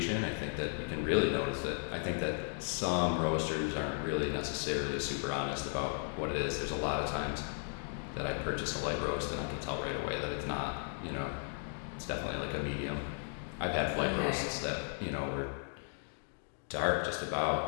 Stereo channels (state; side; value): silent; right; 54 dB below the other